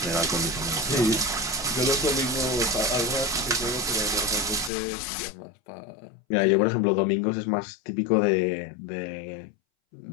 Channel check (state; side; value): drops out; right; at 4.7 s